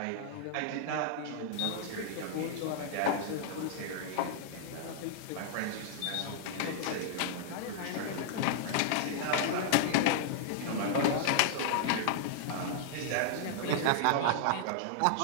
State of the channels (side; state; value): both; different; correlation -0.01